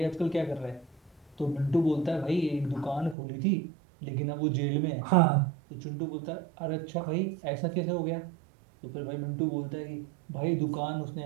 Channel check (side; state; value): left; drops out; at 3.2 s